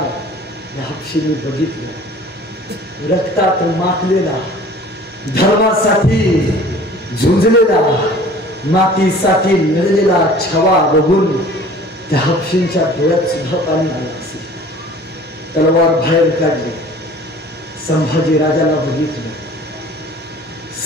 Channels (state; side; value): normal; both; correlation 0.47